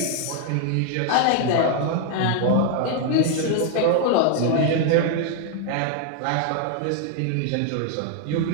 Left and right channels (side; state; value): both; different; correlation 0.00